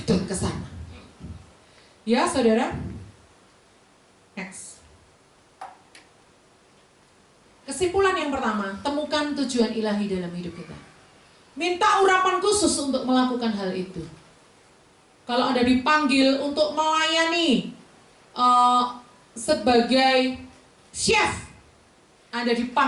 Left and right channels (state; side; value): identical; both; correlation 1.00